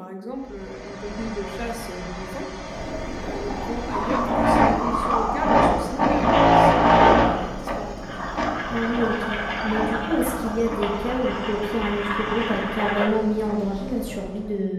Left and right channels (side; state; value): both; identical; correlation 1.00